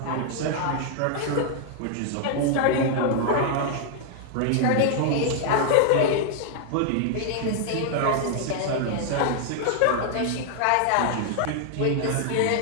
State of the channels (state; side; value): different; both; correlation 0.00